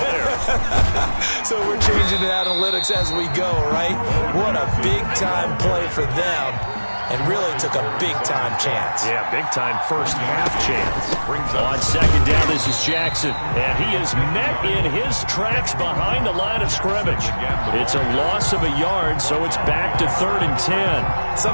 there. So we're changing to analytics as we go, right? What a big-time play for them. And really took a big-time chance. Yeah, big-time first-half chance. On second down, this is Jackson. And he is met in his tracks behind the line of scrimmage. It's a loss of a yard, so it's back to 3rd and 10.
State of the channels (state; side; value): inverted; both; correlation -1.00